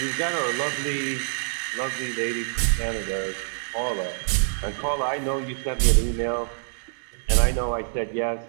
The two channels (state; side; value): silent; left; 61 dB below the other